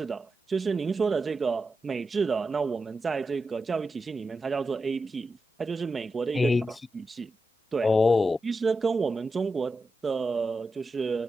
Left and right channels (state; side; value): normal; both; correlation 0.90